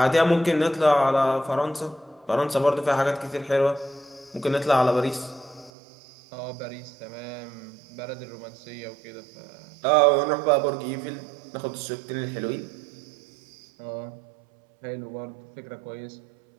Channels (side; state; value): left; drops out; at 5.7 s